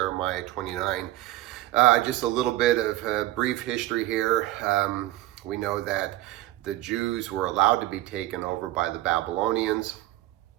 29. Just a little bit of brief history here. We know that the Jews were allowed to be taken over by the Babylonians,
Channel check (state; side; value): quieter; left; 16.3 dB